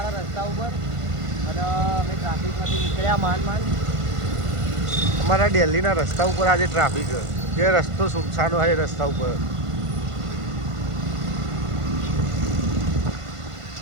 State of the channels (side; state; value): left; late; 1.5 ms